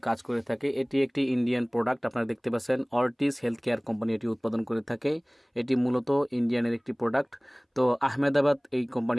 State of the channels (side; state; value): both; identical; correlation 1.00